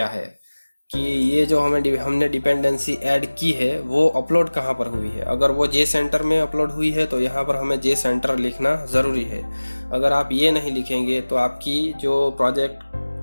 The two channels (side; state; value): both; inverted; correlation -1.00